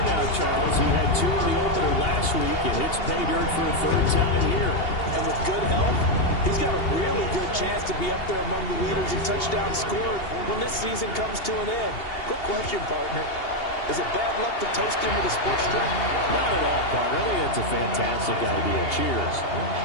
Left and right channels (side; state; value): right; late; 2.8 ms